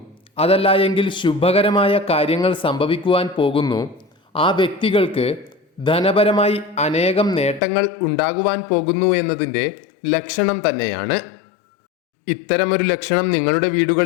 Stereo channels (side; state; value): right; drops out; at 7.6 s